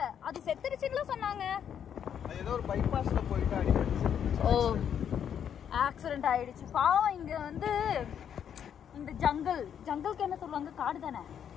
அது செத்துருச்சுன்னு சொன்னாங்க. ஏதோ ஒரு பைபாஸ்ல போயிட்டு அடிச்சு ஆக்சிடென்ட் ஆயிடுச்சு. பாவம். இங்க வந்து இந்த ஜங்கலுக்கு என்ன சொல்லுவாங்க, காடு தானே.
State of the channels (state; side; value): quieter; right; 8.7 dB